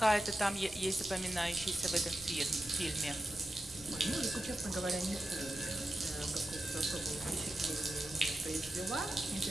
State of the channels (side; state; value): right; noise; rumble, 20 dB below the sound